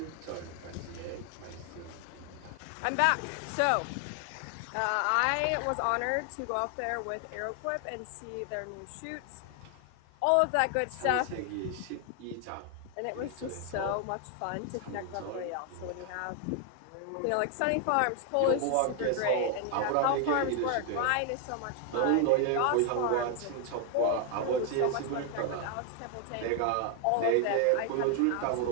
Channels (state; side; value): different; both; correlation 0.00